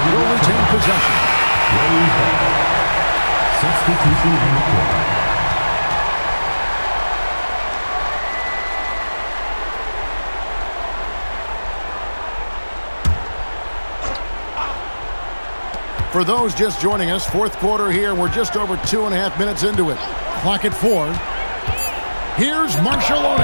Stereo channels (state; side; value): inverted; both; correlation -1.00